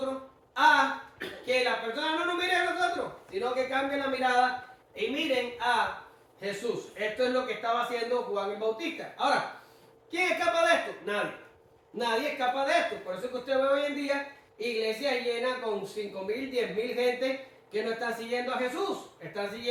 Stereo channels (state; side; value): identical; both; correlation 1.00